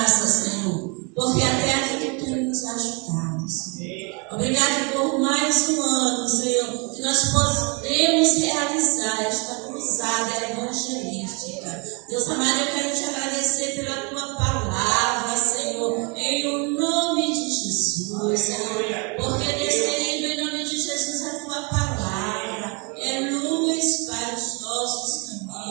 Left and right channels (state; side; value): quieter; left; 32.4 dB